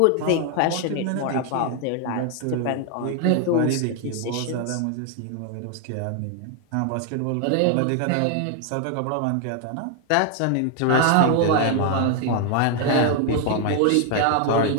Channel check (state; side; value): different; both; correlation 0.00